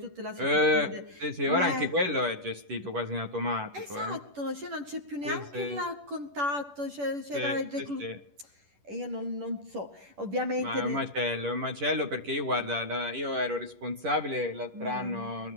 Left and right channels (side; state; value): left; late; 10 ms